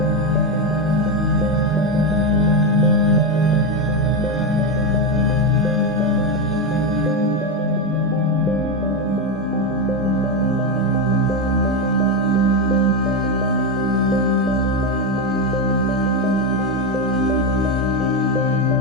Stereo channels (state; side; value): normal; both; correlation 0.10